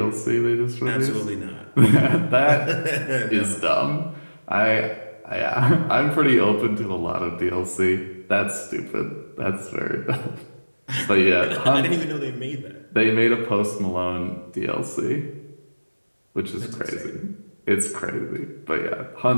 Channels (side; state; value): both; inverted; correlation -1.00